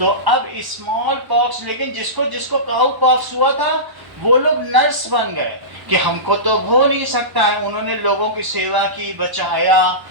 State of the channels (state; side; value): late; left; 1.1 ms